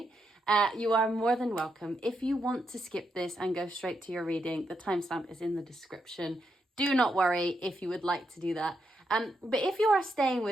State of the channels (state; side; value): normal; both; correlation 0.82